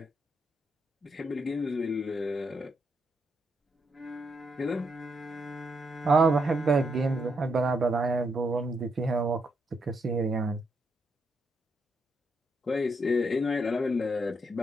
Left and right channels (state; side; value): normal; both; correlation 0.79